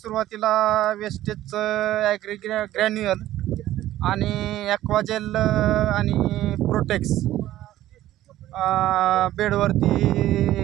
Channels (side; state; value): left; quieter; 14.1 dB